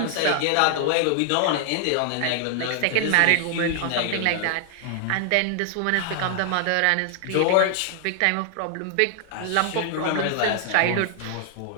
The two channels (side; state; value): both; different; correlation 0.00